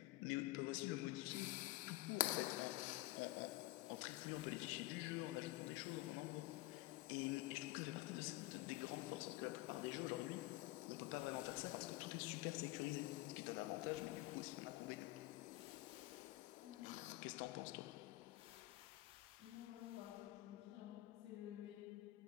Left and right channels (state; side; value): quieter; right; 19.3 dB